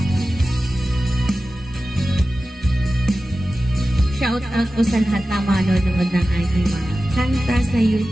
Shout out po sa lahat na manonood ng ating mga kanta sa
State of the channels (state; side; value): normal; both; correlation 0.94